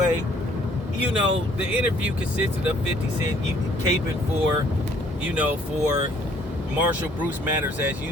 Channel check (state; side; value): normal; both; correlation 0.61